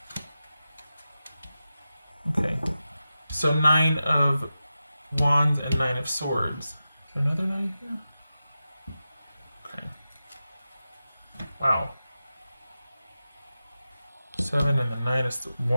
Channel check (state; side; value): inverted; both; correlation -0.92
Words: okay, so Nine of Wands and Nine of Swords. Is there another nine here? Okay. Wow. 7 and the Nine of